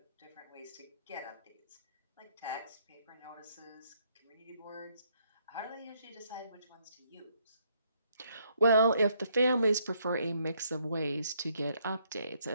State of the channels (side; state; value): both; inverted; correlation -0.71